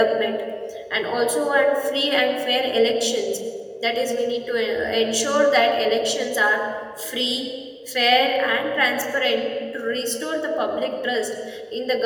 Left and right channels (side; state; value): both; identical; correlation 1.00